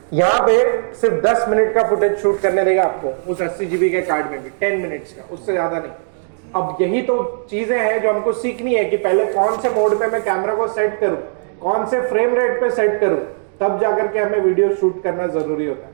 यहां पे सिर्फ 10 मिनट का फुटेज शूट करने देगा आपको उस 80 GB के कार्ड में भी, 10 मिनट्स का, उससे ज्यादा नहीं। अब यही तो चीजें हैं जो हमको सीखनी है कि पहले कौन से मोड पे मैं कैमरा को सेट करूं, कौन से फ्रेम रेट पे सेट करूं, तब जाकर के हमें वीडियो शूट करना जरूरी होता है।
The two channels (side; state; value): left; silent; digital silence